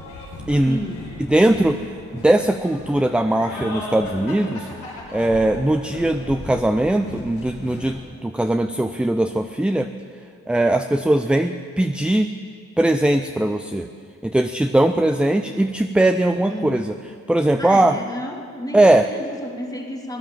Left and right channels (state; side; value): normal; both; correlation 0.91